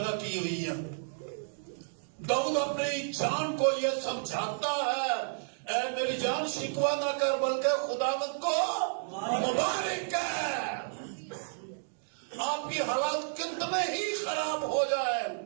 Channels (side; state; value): left; silent; digital silence